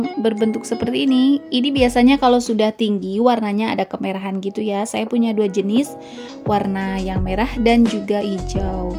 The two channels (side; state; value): both; identical; correlation 1.00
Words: berbentuk seperti ini. Ini biasanya kalau sudah tinggi warnanya ada kemerahan gitu ya. Saya punya dua jenis, warna yang merah dan juga hijau.